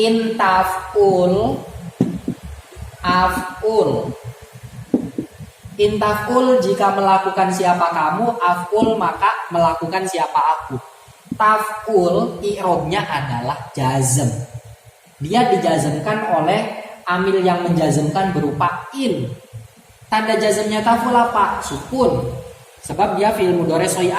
taf'ul, af'ul. In taf'ul jika melakukan siapa kamu, af'ul maka melakukan siapa aku. Taf'ul i'rabnya adalah jazm. Dia dijazmkan oleh amil yang menjazmkan berupa in. Tanda jazmnya taf'ul apa? Sukun. Sebab dia fi'il mudhari soi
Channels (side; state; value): both; identical; correlation 1.00